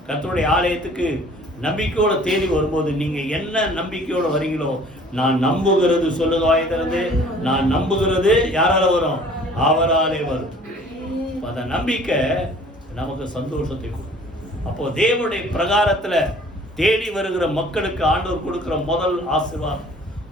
கர்த்தருடைய ஆலயத்துக்கு நம்பிக்கையோட தேடி வரும்போது நீங்க என்ன நம்பிக்கையோட வரீங்களோ, நான் நம்புகிறது சொல்லுங்க வாய் திறந்து, நான் நம்புகிறது யாரால வரும்? அவராலே வரும். அந்த நம்பிக்கை நமக்கு சந்தோஷத்தை கொடுக்கும். அப்போ தேவனுடைய பிரகாரத்துல தேடி வருகிற மக்களுக்கு ஆண்டவர் கொடுக்கிற முதல் ஆசீர்வாதம்,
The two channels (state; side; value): normal; both; correlation 0.51